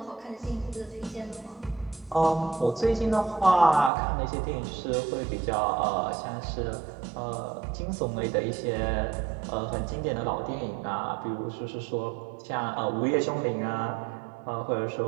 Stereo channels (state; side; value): drops out; left; at 3.9 s